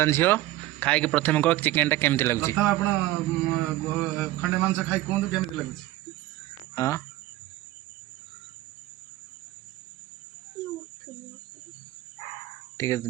झील खाई प्रथम कह चिकेन टा केमती लगुच प्रथम आपण खंडे मांस खाई कोंदु केमती लगुच हाँ ठीक है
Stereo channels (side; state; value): left; quieter; 16.4 dB